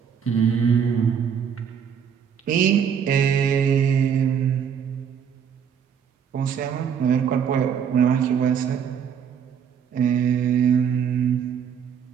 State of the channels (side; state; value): left; quieter; 7.7 dB